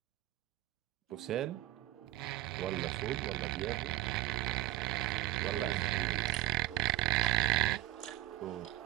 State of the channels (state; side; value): quieter; left; 16.2 dB